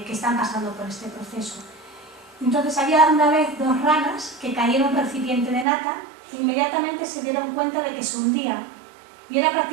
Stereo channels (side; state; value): left; drops out; at 5.7 s